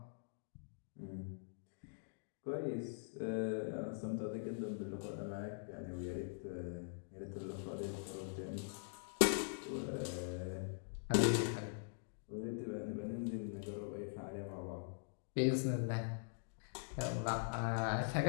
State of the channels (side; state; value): right; silent; digital silence